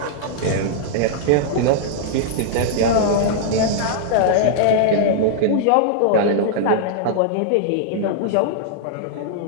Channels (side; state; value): both; different; correlation -0.01